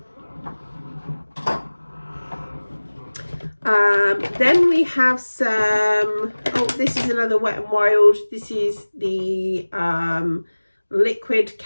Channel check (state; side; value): inverted; both; correlation -1.00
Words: Then we have some, oh, this is another Wet n Wild. This is the liquid